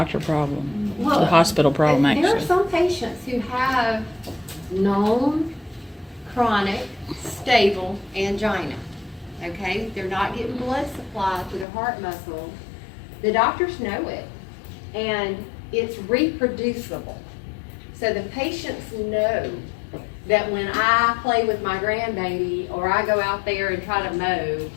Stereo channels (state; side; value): drops out; right; at 11.7 s